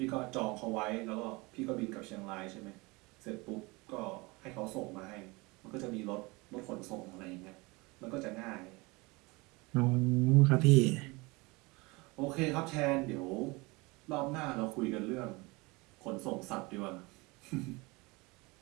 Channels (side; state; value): left; quieter; 24.9 dB